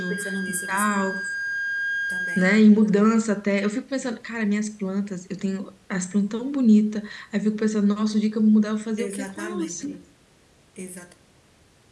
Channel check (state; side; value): identical; both; correlation 1.00